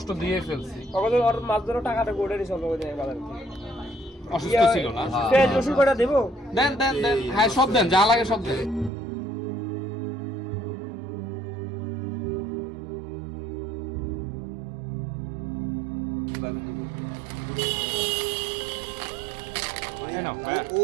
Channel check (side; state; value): left; drops out; at 8.9 s